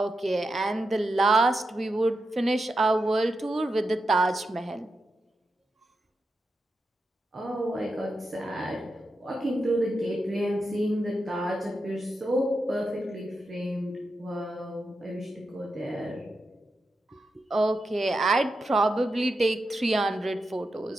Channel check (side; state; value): both; normal; correlation 0.88